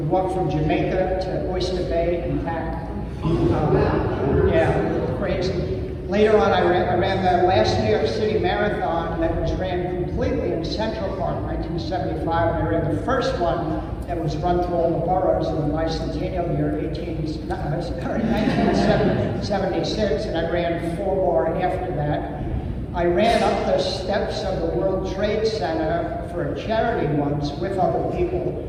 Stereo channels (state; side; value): identical; both; correlation 1.00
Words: walked from Jamaica to Oyster Bay and back. Yeah, crazy. Later on, I ran the last New York City Marathon that was ran completely in Central Park, 1975. And I ran the first one that was run through all the boroughs in the bicentennial year, 1976, and I ran 4 more after that. I ran up the steps of the World Trade Center for a charity once with other people,